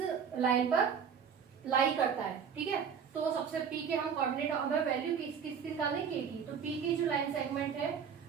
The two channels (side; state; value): left; quieter; 7.1 dB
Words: लाइन पर लाई करता है। ठीक है, तो सबसे P के हम कोऑर्डिनेट, हमें वैल्यू किसकी निकालने K की। तो P की जो लाइन सेगमेंट है